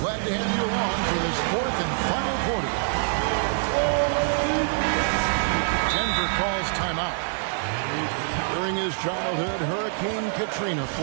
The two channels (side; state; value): left; silent; digital silence